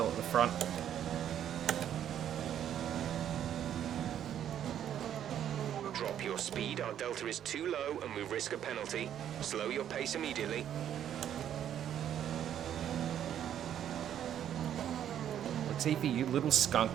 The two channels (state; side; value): quieter; left; 10.2 dB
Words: at the front. Drop your speed. Our delta is too low and we risk a penalty. Slow your pace immediately. Latifi, you little skunk.